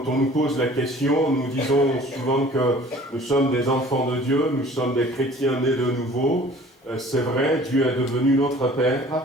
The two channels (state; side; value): normal; both; correlation 0.49